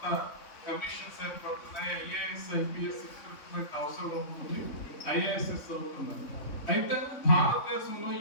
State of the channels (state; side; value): late; right; 3.6 ms